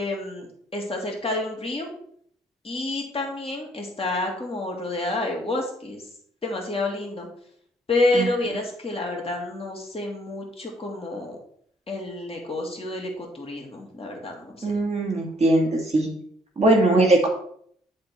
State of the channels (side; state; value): both; normal; correlation 0.64